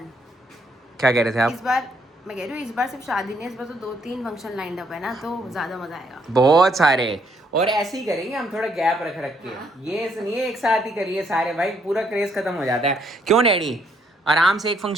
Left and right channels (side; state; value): both; normal; correlation 0.70